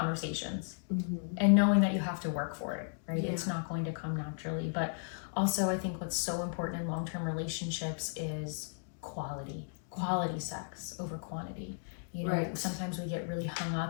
and knowing that you have to work for it, right? Yeah. It's not going to come naturally. But also, I think what's so important in long-term relationships is quality sex over quantity. You know, sometimes we get really hung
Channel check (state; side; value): silent; right; digital silence